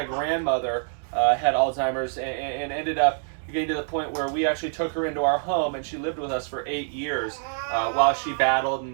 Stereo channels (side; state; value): left; silent; 61 dB below the other